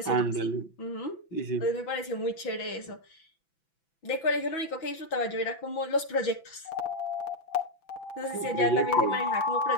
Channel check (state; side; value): late; right; 6.0 ms